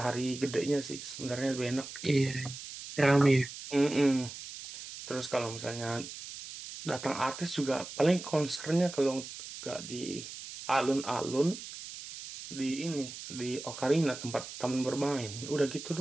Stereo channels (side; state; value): right; noise; hiss, 11 dB below the sound